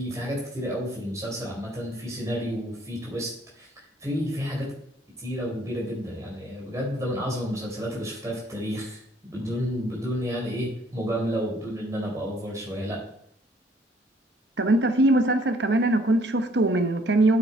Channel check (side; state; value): both; normal; correlation 0.63